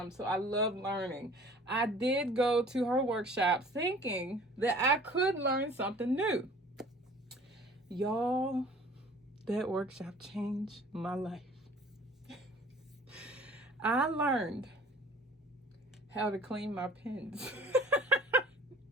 So I love learning. I did go to her workshop thinking that I could learn something new. Y'all, that workshop changed my life. I learned how to clean my pens.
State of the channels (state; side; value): normal; both; correlation 0.50